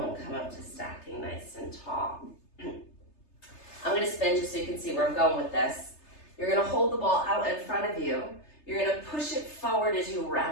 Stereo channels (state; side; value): late; right; 3.3 ms